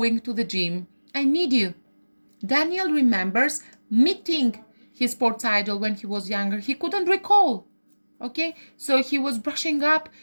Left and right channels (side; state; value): both; inverted; correlation -1.00